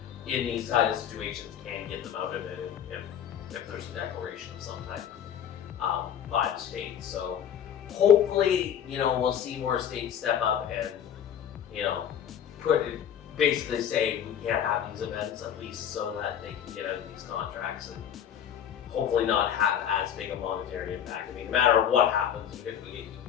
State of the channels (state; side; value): quieter; right; 9.2 dB